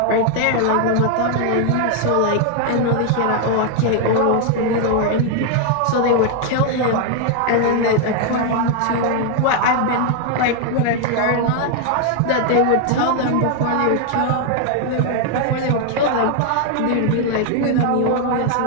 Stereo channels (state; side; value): different; both; correlation 0.00